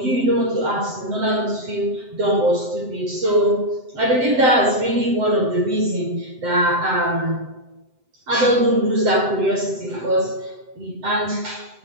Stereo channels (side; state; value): left; late; 7.8 ms